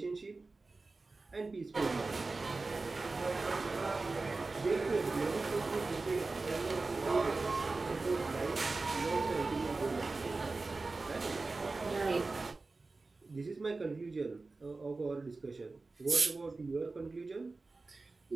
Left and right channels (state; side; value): quieter; left; 3.6 dB